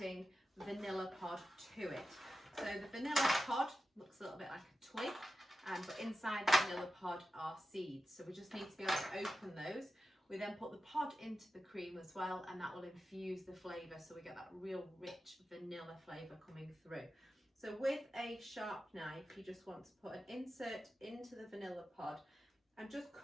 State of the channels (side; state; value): both; normal; correlation 0.92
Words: vanilla pod to it. So the vanilla pod looks a little bit like a twig, but inside the vanilla pod are seeds, so we just need to be able to open those. We then put the pod into the cream as well, and that will infuse the flavour, so we get that real rich vanilla flavour coming through. So with a sharp knife, you just want to put an insert into the vanilla pod and just